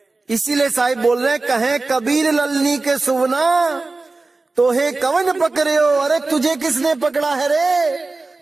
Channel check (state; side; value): quieter; left; 3.5 dB